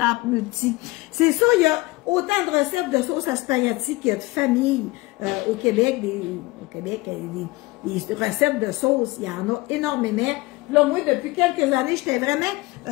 multi. C'est ça, il y a autant de recettes de sauce à spaghetti qu'il y a de familles au Québec. Des recettes de sauce, il y en a énormément. Là, moi, depuis quelques années, j'étais vraiment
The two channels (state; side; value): quieter; right; 21.8 dB